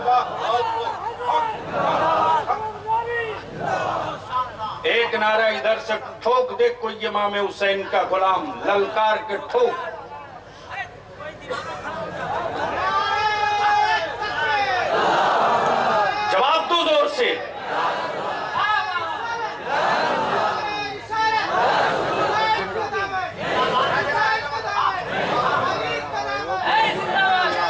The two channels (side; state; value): both; identical; correlation 1.00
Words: एक नारा इधर से ठोक दे कोई इमाम हुसैन का गुलाम, ललकार के ठोक। जवाब दो जोर से।